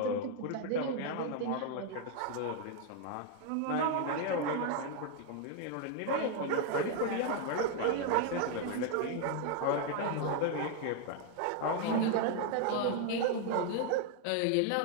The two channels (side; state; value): both; different; correlation 0.00